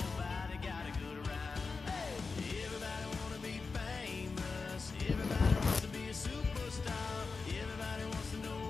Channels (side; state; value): right; quieter; 4.5 dB